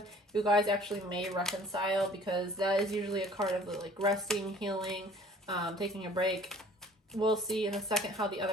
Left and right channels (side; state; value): both; normal; correlation 0.52